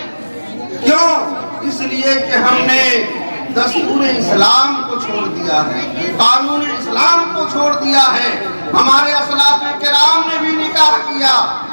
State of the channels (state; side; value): inverted; both; correlation -1.00